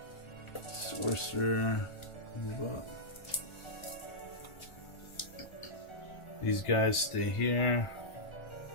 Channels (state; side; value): late; right; 1.5 ms